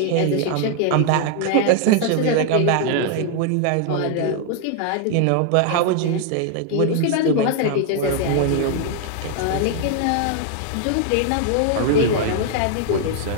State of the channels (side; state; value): both; different; correlation 0.00